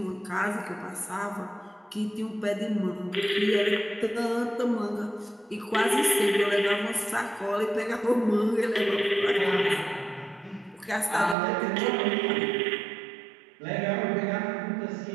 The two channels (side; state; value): left; drops out; at 11.4 s